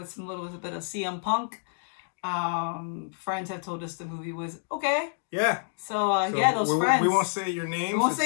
some little bit of CM Punk. Friends have told us the movie was okay. Yeah. So those friends. We won't say your names. We won't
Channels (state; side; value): silent; right; digital silence